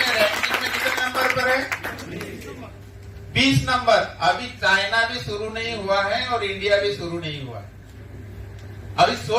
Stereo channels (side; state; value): both; identical; correlation 1.00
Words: रैंकिंग में कितने नंबर पर है? 20 नंबर। अभी चाइना भी शुरू नहीं हुआ है और इंडिया भी शुरू नहीं हुआ है। अभी